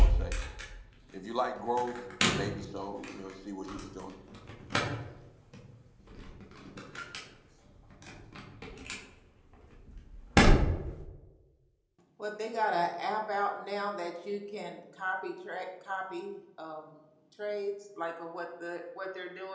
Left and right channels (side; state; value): both; identical; correlation 1.00